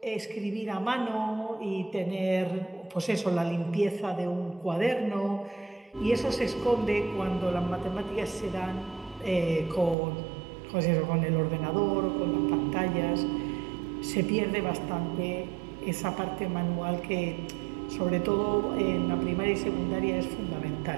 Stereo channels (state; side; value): drops out; left; at 10.0 s